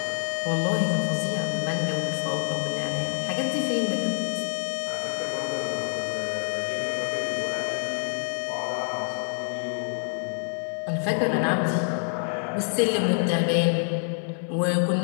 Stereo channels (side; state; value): right; silent; 60 dB below the other